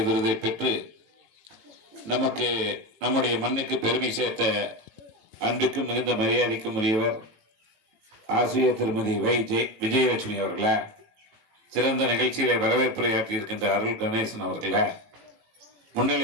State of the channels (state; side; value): late; left; 18 ms